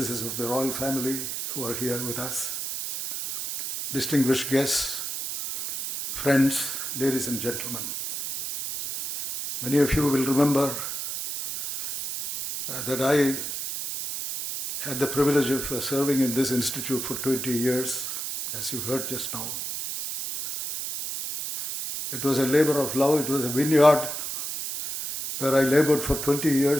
of the royal family who are here with us, distinguished guests, friends, ladies and gentlemen. Many of you will remember that I had the privilege of serving in this institute for 20 years, as you heard just now. It was a labor of love, it was a vineyard where I labored for 20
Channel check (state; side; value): noise; right; hiss, 4 dB below the sound